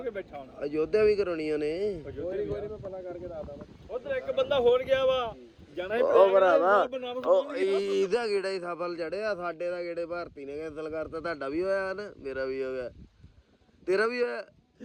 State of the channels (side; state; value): both; identical; correlation 1.00